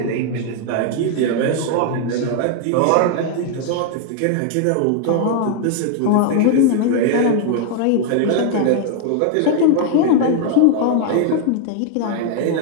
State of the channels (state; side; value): different; both; correlation 0.00